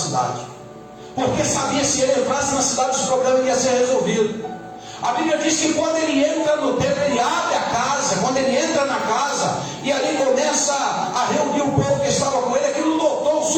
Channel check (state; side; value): identical; both; correlation 1.00